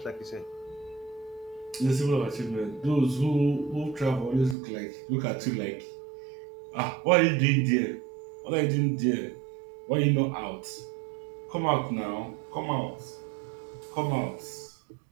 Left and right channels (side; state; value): left; drops out; at 4.5 s